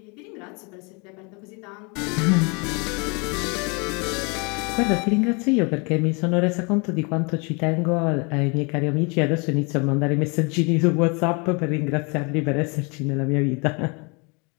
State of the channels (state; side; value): quieter; right; 31.6 dB